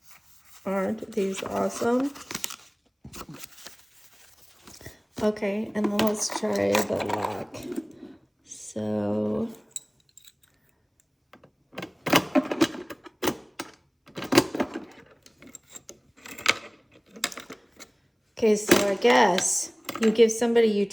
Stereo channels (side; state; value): both; identical; correlation 1.00